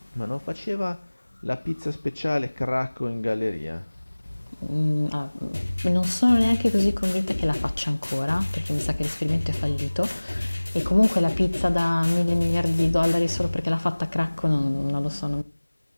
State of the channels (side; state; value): both; inverted; correlation -1.00